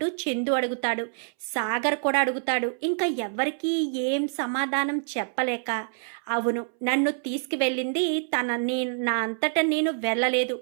చందు అడుగుతాడు. సాగర్ కూడా అడుగుతాడు. ఇంకా ఎవరికి ఏం సమాధానం చెప్పలేక, అవును, నన్ను తీసుకువెళ్ళింది నా అంతటా నేను వెళ్ళలేదు,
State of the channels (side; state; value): left; silent; 61 dB below the other